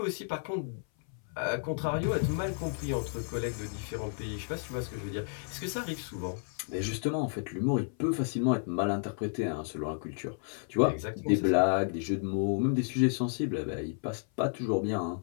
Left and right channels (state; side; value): silent; right; 56 dB below the other